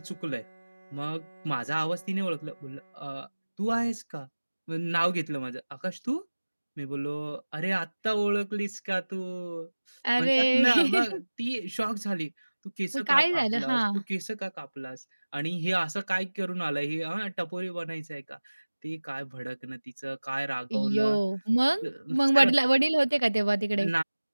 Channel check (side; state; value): both; inverted; correlation -1.00